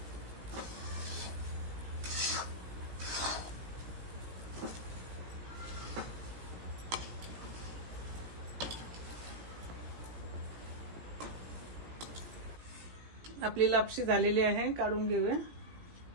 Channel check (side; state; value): left; late; 17 ms